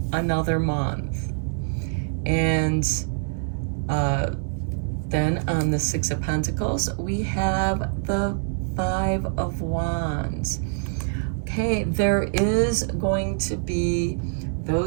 another month. And then on the Six of Pentacles, we have the Five of Wands. Okay, there is going to be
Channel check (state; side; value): silent; left; digital silence